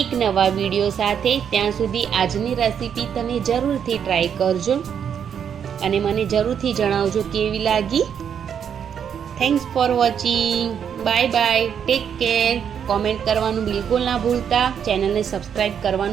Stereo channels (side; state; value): left; quieter; 8.1 dB